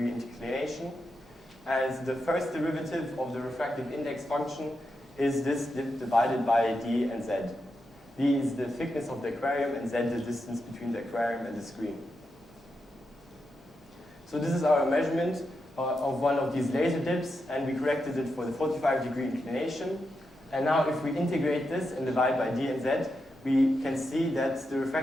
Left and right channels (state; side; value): normal; both; correlation 0.86